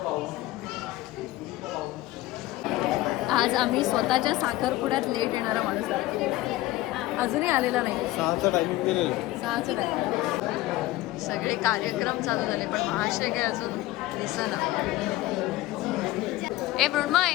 आज आम्ही स्वतःच्या साखरपुड्यात लेट येणारा माणूस आहे. अजूनही आलेला नाही. 6चा टायमिंग दिलेलं. 6चं टायमिंग. सगळे कार्यक्रम चालू झाले पण महाशय काय अजून दिसेना. ए मृण्मय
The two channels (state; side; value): quieter; right; 17.3 dB